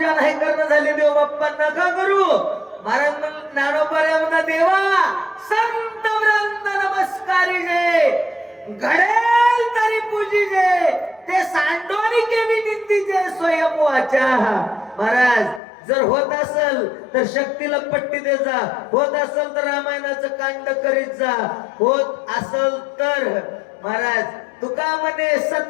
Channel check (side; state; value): right; drops out; at 15.6 s